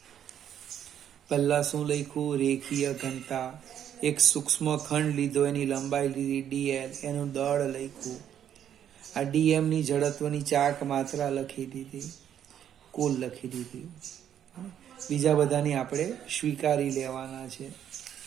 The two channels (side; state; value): left; quieter; 9.8 dB